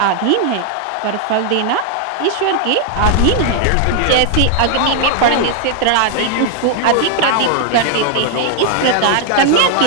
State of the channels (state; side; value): different; both; correlation 0.00